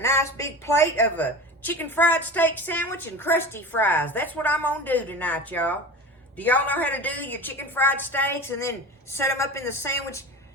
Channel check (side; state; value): both; normal; correlation 0.32